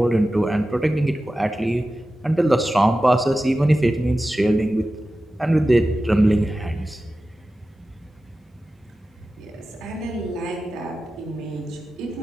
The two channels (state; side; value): normal; both; correlation 0.94